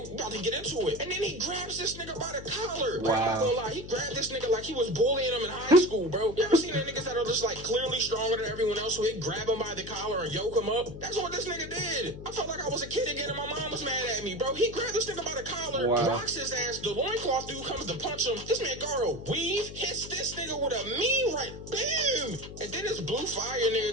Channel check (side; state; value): left; noise; hum, 12 dB below the sound